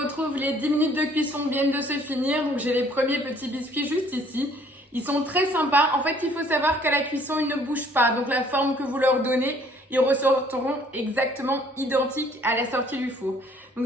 les 10 minutes de cuisson viennent de se finir. Donc j'ai les premiers petits biscuits juste ici. Ils sont très sympas. En fait, il faut savoir qu'à la cuisson, ils ne bougent pas. Donc, la forme que vous leur donnez, ils ressortiront exactement identiques à la sortie du four. Donc,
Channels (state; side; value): normal; both; correlation 0.59